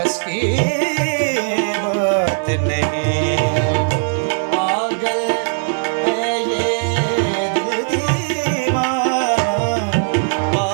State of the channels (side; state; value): left; silent; 67 dB below the other